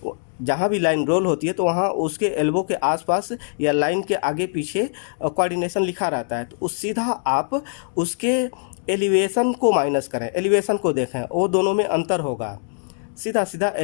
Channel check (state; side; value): silent; right; digital silence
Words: जहाँ भी लाइन रोल होती है तो वहाँ उसके एल्बो के आसपास या लाइन के आगे पीछे कोऑर्डिनेशन लिखा रहता है, तो उस सीधा आप उसके एलिवेशन को माइनस करें, एलिवेशन को देखें, वो दोनों में अंतर होगा, सीधा सीधा